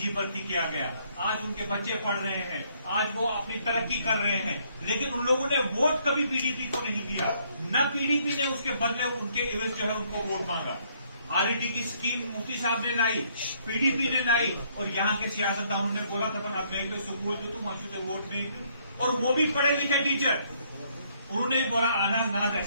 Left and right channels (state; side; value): inverted; both; correlation -0.68